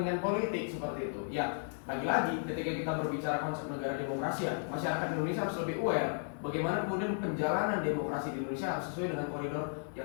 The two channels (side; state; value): right; silent; digital silence